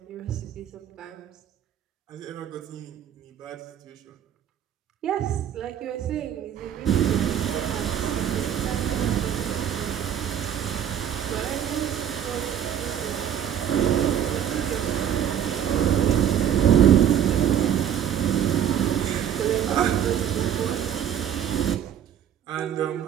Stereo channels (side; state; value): left; quieter; 9.6 dB